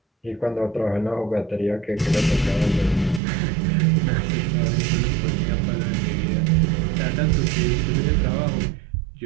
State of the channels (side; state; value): left; drops out; at 3.2 s